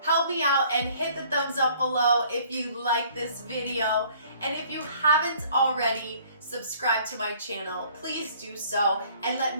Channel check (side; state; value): both; inverted; correlation -0.56